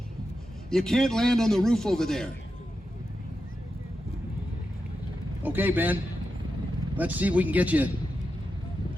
You can't land on the roof over there. Okay, Ben. Let's see if we can get you.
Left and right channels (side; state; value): both; normal; correlation 0.89